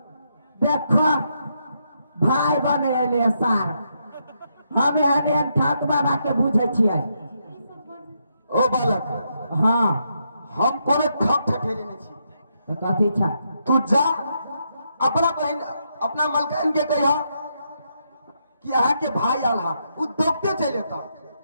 देखो भाई बने एले सार, हम एने ठाक बाबा के बुझे छियै। ओ बालक, हाँ हम कोनो ठक ठठेरी नहीं छी। तो कथी छ? तू जा अपना बहन अपना मालकिन के कहिया कि अहाँ के भाई आल हा, उ दोगते चल जेता।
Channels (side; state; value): both; inverted; correlation -0.79